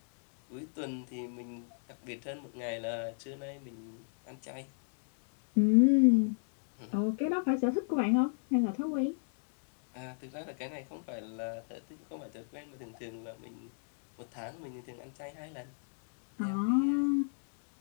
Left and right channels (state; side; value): silent; right; digital silence